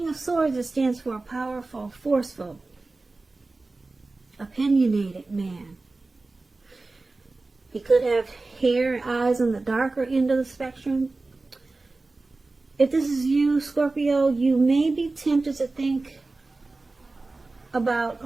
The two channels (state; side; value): quieter; left; 3.4 dB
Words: of Swords, it stands for a powerful, forceful, opinionated man. He could have hair and eyes on the darker end of the spectrum. If this is you, Scorpio, you may be tempted to think about